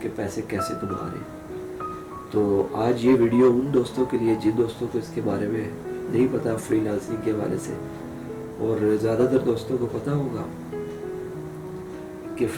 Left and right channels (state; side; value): identical; both; correlation 1.00